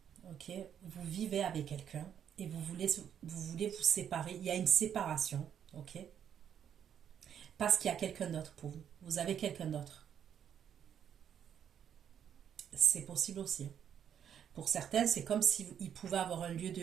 ok? Vous vivez avec quelqu'un et vous voulez vous séparer. Il y a une séparation, ok? Parce qu'il y a quelqu'un d'autre pour vous. Vous avez quelqu'un d'autre. C'est possible aussi. Pour certains, c'est comme s'il pouvait avoir un lieu de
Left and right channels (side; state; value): left; quieter; 8.9 dB